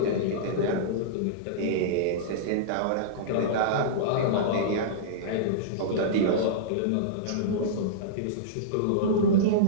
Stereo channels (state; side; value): different; both; correlation -0.03